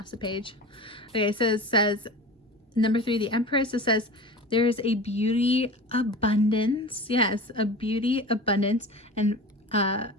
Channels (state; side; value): normal; both; correlation 0.34